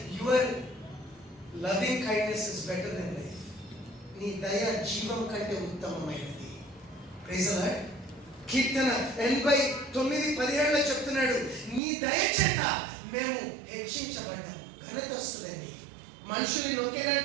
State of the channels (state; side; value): drops out; left; at 11.8 s